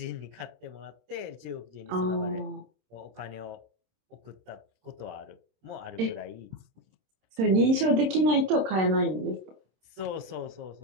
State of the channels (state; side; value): late; left; 26 ms